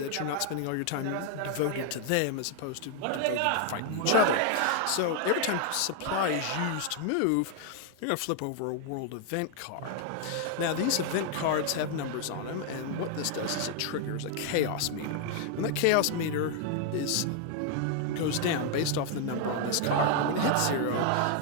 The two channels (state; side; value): different; both; correlation 0.00